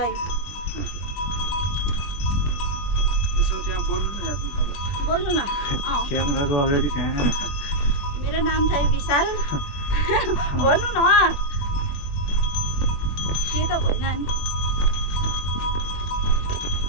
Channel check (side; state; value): right; late; 21 ms